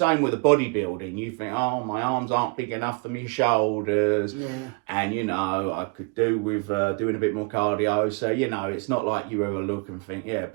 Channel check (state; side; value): quieter; left; 32.7 dB